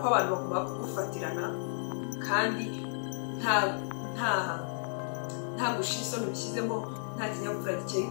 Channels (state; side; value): silent; right; 56 dB below the other